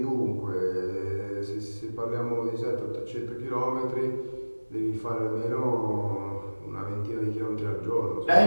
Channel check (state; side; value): inverted; both; correlation -1.00